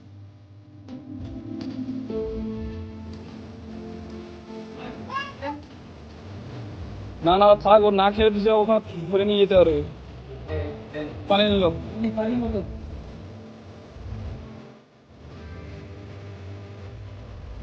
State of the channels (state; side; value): identical; both; correlation 1.00